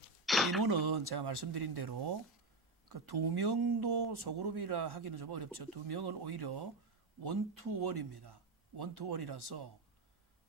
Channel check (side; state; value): left; quieter; 3.0 dB